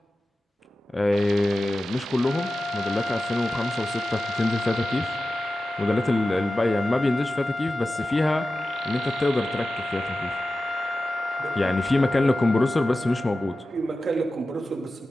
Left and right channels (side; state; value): both; normal; correlation 0.94